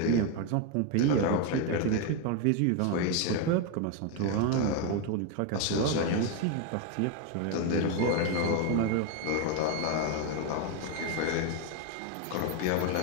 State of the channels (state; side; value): different; both; correlation 0.02